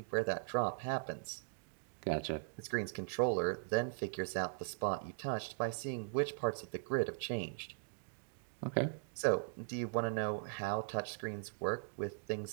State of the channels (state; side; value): silent; left; digital silence